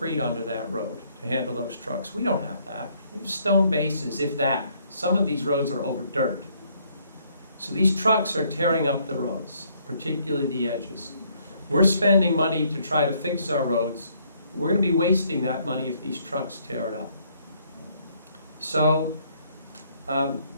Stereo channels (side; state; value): both; inverted; correlation -0.67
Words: under that road to handle those trucks. We don't have that. We have stone bases, if that. Some of these roads are over dirt. So these trucks are tearing up the roads, particularly the edges. We're spending money to try to fix our roads. We're going to be wasting that money if these trucks tear it up. So